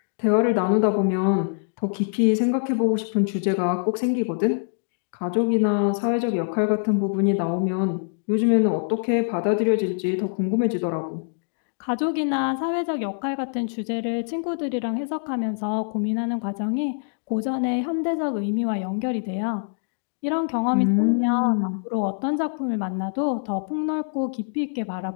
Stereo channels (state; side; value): silent; right; digital silence